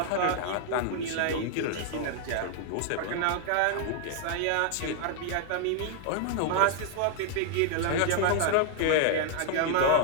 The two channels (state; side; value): different; both; correlation 0.00